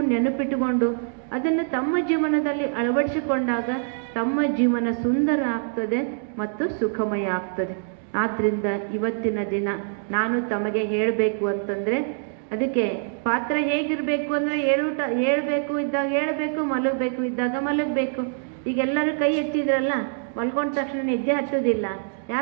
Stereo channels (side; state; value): left; silent; digital silence